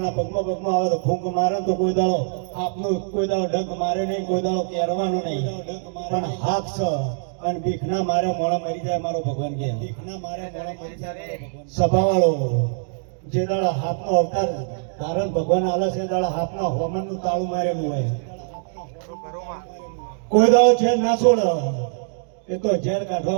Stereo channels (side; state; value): left; silent; digital silence